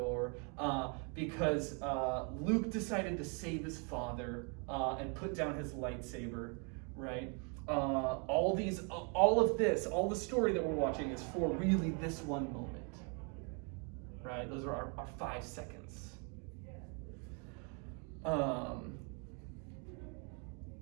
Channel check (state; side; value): quieter; left; 36.6 dB